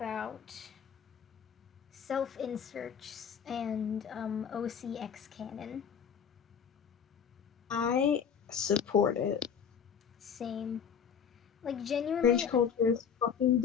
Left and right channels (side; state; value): right; quieter; 7.4 dB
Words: self-inserts and OCX canon? I support it. Same. Like, genuinely... Cringe culture is fucking